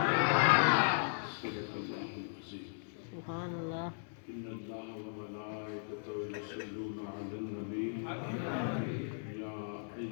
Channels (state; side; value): silent; right; digital silence